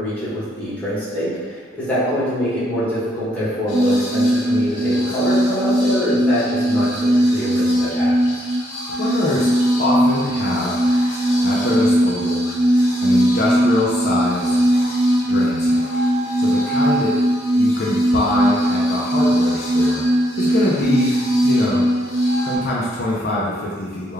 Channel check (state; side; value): normal; both; correlation 0.76